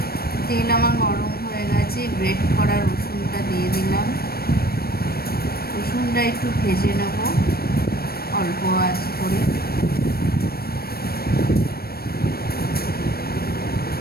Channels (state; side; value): late; right; 0.44 ms